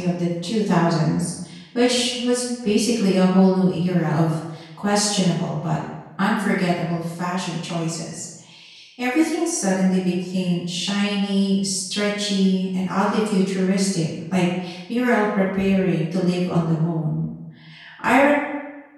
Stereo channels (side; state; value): both; identical; correlation 1.00